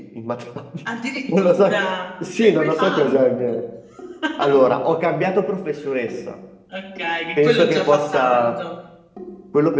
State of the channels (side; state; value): both; identical; correlation 1.00